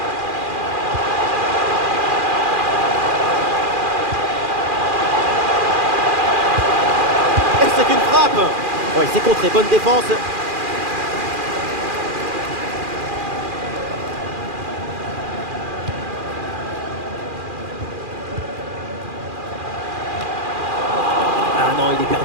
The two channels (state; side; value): late; left; 2.4 ms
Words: Et c'est une frappe. Oui, c'est contré, bonne défense. Il est